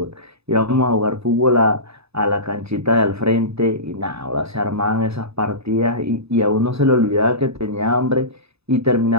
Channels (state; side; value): late; left; 0.79 ms